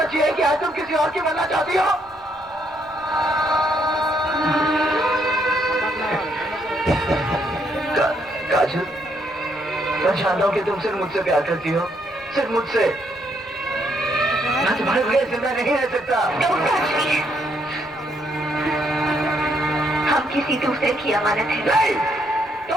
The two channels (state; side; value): noise; left; rumble, 28 dB below the sound